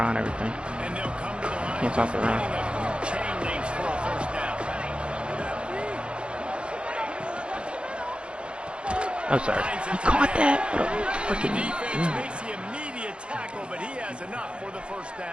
everything. And they'll come to the line. Can't stop the run. Chain links for a first down. Oh, sorry. You caught that? What a freaking... Makes the immediate tackle, but he has enough for the first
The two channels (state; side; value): late; left; 0.057 ms